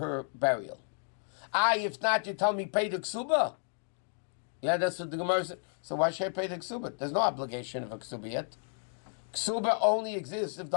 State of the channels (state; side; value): silent; right; 56 dB below the other